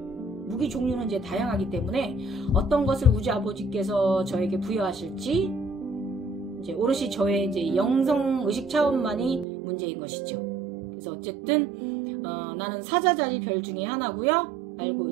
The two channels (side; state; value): left; drops out; at 9.5 s